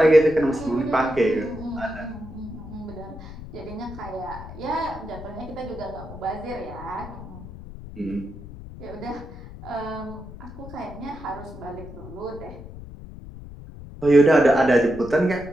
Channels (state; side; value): noise; left; rumble, 14 dB below the sound